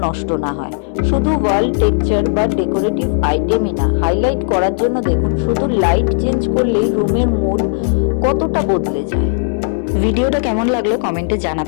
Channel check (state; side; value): silent; right; 62 dB below the other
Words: নষ্ট না হয়। শুধু ওয়াল টেক্সচার বা ডেকোরেটিভ আইটেমই না, হাইলাইট করার জন্য দেখুন শুধু লাইট চেঞ্জ করলেই রুমের মুড কতটা বদলে যায়। ভিডিওটা কেমন লাগলো কমেন্টে